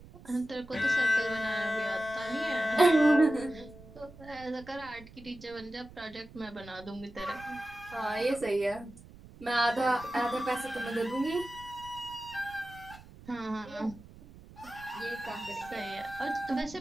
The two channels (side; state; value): right; noise; rumble, 19 dB below the sound